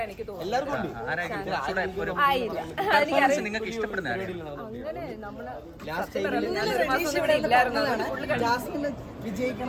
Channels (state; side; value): identical; both; correlation 1.00